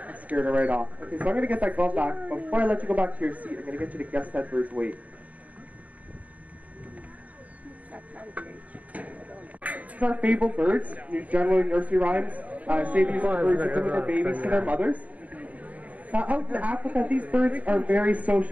Scared her right off. Okay, so I'm going to get that glove back. But before I let you go back to your seat, I'm going to get you to guess that bird's weight. These are fabled birds. Generally, nursery rhymes say these are birds that deliver babies to their mothers. Now, out in Africa, these birds are very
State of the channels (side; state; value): left; late; 0.071 ms